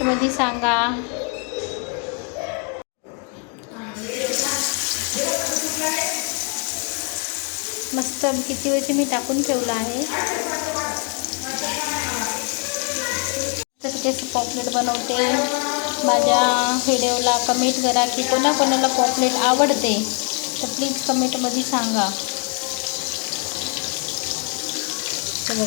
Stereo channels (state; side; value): quieter; right; 37.4 dB